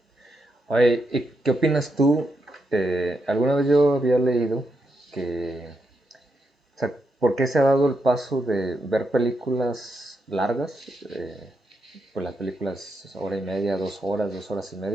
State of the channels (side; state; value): both; normal; correlation 0.83